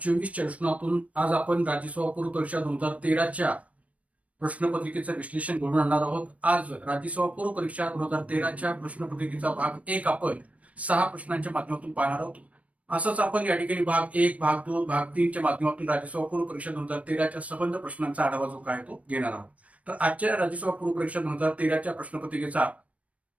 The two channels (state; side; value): late; left; 0.066 ms